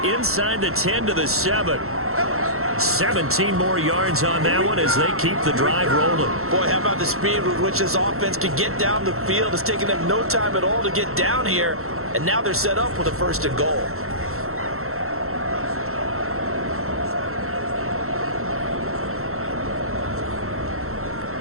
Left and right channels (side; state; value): left; late; 0.63 ms